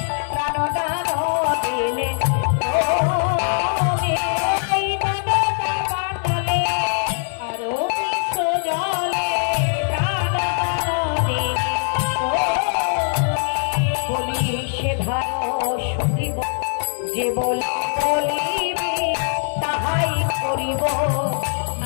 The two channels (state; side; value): silent; right; digital silence